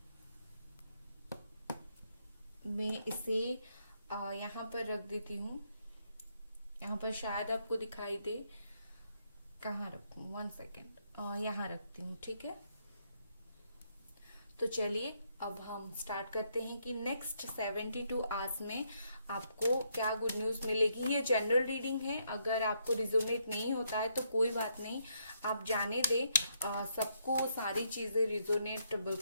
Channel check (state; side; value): inverted; both; correlation -0.75